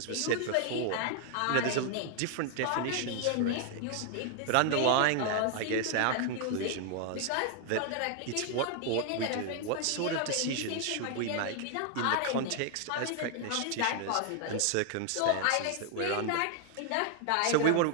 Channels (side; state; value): both; different; correlation 0.00